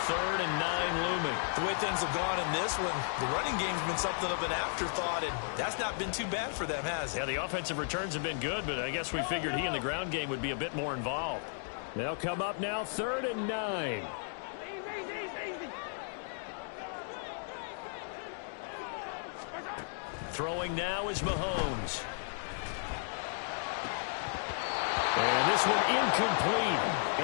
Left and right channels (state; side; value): silent; right; digital silence